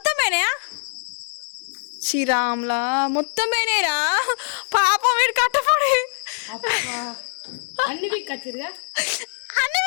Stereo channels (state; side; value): silent; right; digital silence